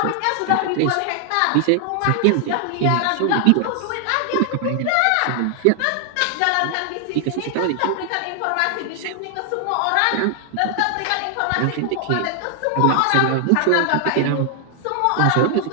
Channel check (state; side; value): different; both; correlation 0.00